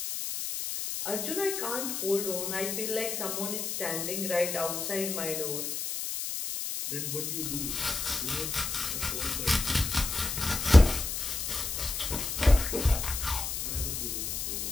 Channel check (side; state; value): left; noise; hiss, 3 dB below the sound